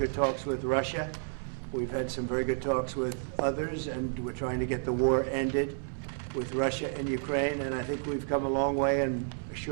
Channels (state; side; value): silent; left; 57 dB below the other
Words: talks with Russia. We've had some very good talks with others, and we're trying to get the war ended with Russia and Ukraine, and I think we've come a long way in a